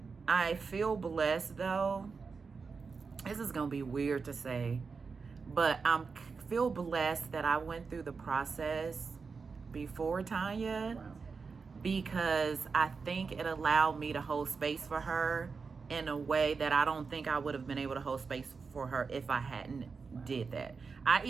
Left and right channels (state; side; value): quieter; left; 5.0 dB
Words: I feel blessed, though. This is going to be weird to say, but I feel blessed that I went through the process before Tanya, because I think it allowed me to hold space for her in a way that I don't think I would have been able to hold space for her if I hadn't did that. I